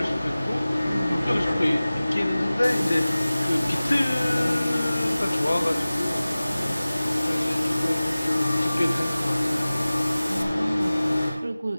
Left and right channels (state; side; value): inverted; both; correlation -0.98